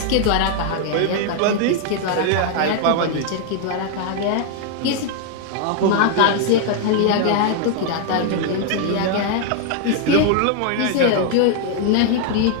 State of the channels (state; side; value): different; both; correlation 0.00